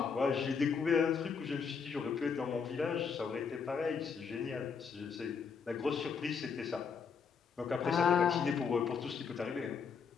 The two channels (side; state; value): right; quieter; 6.0 dB